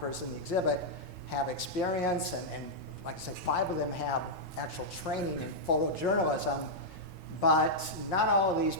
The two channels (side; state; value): right; noise; rumble, 18 dB below the sound